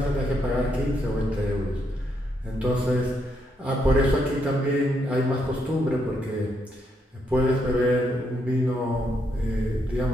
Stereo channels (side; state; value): both; normal; correlation 0.77